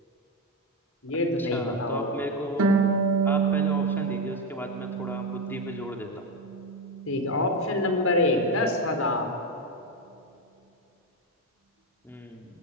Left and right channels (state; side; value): normal; both; correlation 0.10